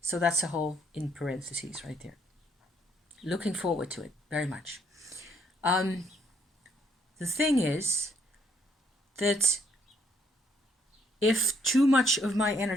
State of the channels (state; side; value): normal; both; correlation 0.69